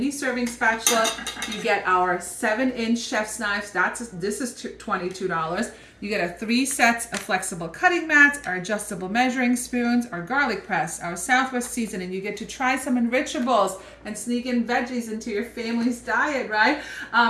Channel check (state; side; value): identical; both; correlation 1.00